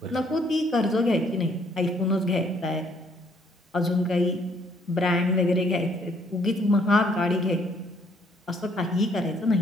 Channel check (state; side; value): normal; both; correlation 0.65